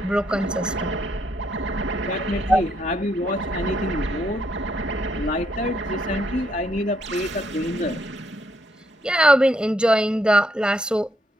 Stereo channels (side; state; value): both; normal; correlation 0.74